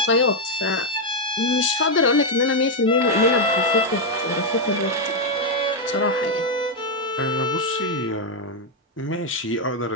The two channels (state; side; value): normal; both; correlation 0.02